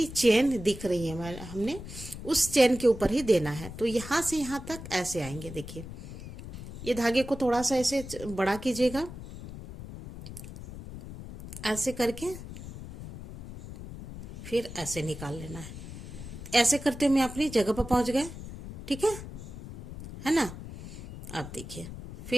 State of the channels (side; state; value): left; noise; rumble, 12 dB below the sound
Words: चेन दिख रही है हमने उस चेन के ऊपर ही देना है। तो यहाँ से यहाँ तक ऐसे आएंगे। देखिए ये धागे को थोड़ा सा ऐसे बड़ा कीजिएगा, ऐसे करके फिर ऐसे निकाल लेना है। ऐसे करते हुए अपनी जगह पर पहुंच गए। ठीक है ना। अब देखिए